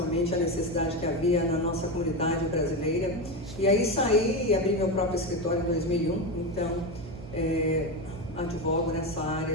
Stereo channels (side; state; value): right; noise; hum, 14 dB below the sound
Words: a necessidade que havia na nossa comunidade brasileira. E aí saí e abri meu próprio escritório em 2001, então advogo nessa